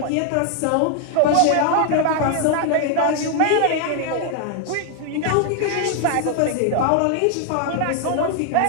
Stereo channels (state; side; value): different; both; correlation 0.00